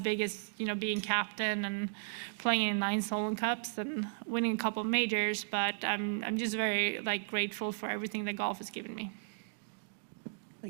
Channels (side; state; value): left; silent; digital silence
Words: as being captain and playing in 9 Solheim Cups and winning a couple of majors. But I'm just very grateful for everything that golf has given me.